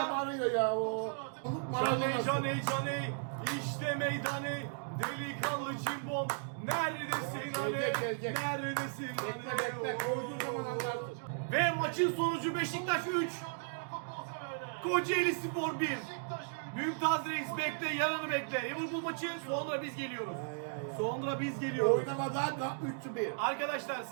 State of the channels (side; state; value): left; silent; digital silence